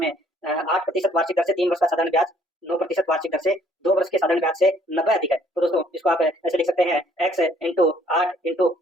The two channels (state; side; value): normal; both; correlation 0.62